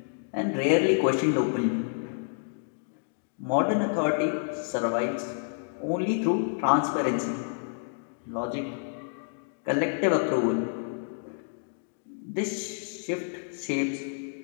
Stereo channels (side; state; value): right; silent; digital silence